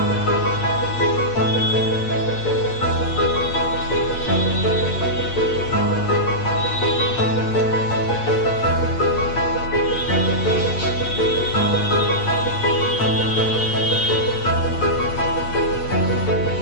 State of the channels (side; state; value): right; late; 8.6 ms